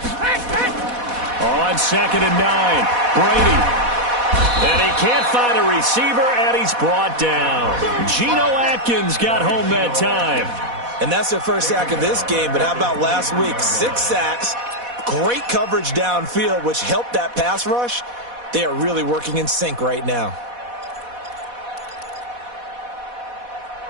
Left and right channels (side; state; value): left; late; 4.1 ms